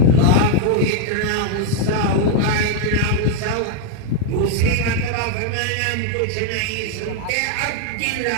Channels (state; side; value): different; both; correlation 0.00